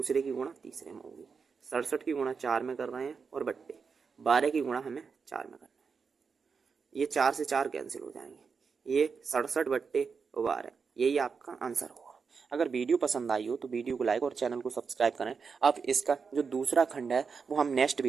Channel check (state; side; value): quieter; left; 5.5 dB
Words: की गुणा तीसरे में होगी। 67 की गुणा 4 में कर रहे हैं और बट्टे 12 की गुणा हमें 4 में करना है। ये 4 से 4 कैंसिल हो जाएंगे ये 67 बट्टे 12 यही आपका आंसर होगा। अगर वीडियो पसंद आई हो तो वीडियो को लाइक और चैनल को सब्सक्राइब करें। अब इसका जो दूसरा खंड है वो हम नेक्स्ट